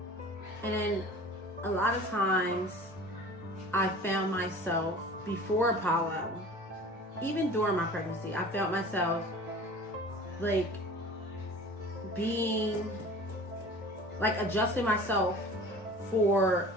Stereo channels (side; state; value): both; normal; correlation 0.42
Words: And then a lot of times I found myself before Apollo, even during my pregnancy, I felt myself like being like adjusting myself for